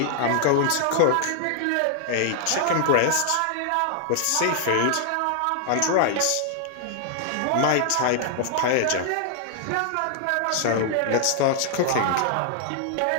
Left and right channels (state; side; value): different; both; correlation -0.01